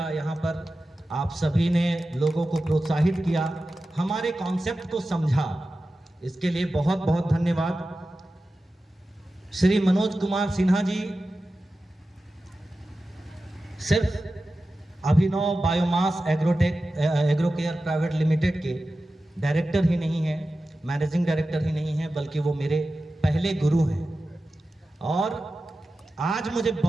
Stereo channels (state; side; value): normal; both; correlation 0.94